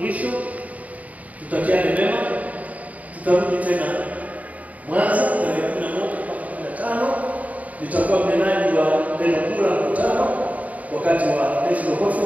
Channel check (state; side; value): late; left; 0.071 ms